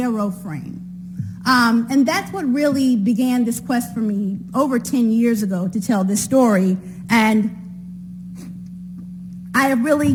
frame. And that's what really began this quest for me over 10 years ago to tell this story. And I have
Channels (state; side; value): identical; both; correlation 1.00